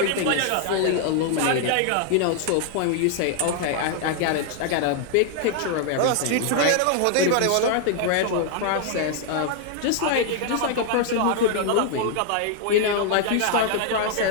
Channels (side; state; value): both; different; correlation 0.00